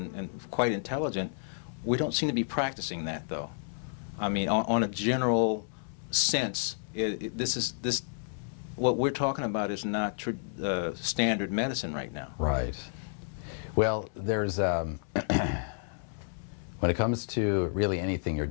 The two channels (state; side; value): silent; right; 57 dB below the other